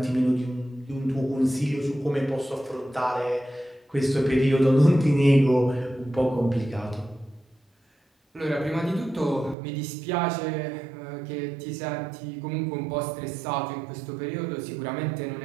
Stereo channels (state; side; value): drops out; left; at 9.6 s